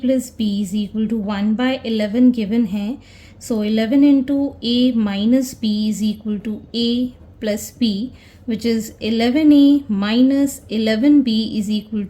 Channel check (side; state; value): both; identical; correlation 1.00